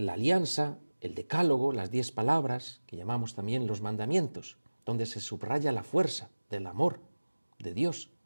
alianza, el decálogo, las 10 palabras, que llamamos también los mandamientos, donde se subraya la fuerza del amor de Dios,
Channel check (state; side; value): inverted; both; correlation -1.00